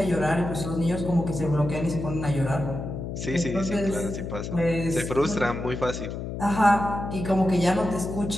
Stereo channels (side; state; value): left; noise; hum, 6 dB below the sound